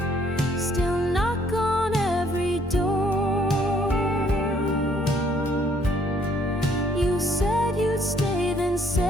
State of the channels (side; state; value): both; normal; correlation 0.65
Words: still knock on every door. You said you'd stay, then